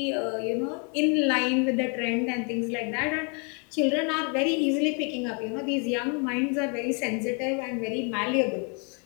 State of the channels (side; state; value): right; quieter; 36.7 dB